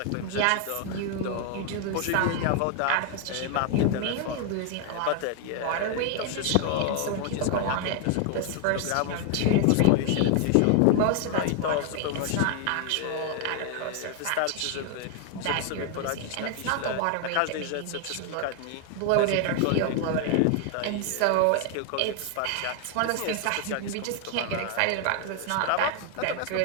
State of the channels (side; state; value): both; different; correlation 0.00